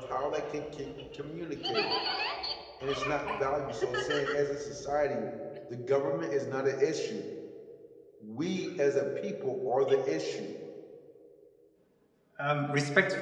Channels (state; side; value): identical; both; correlation 1.00